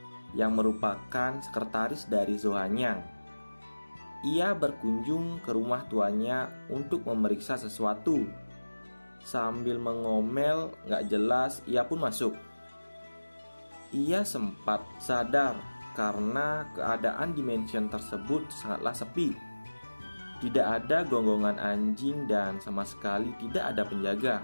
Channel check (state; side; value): inverted; both; correlation -1.00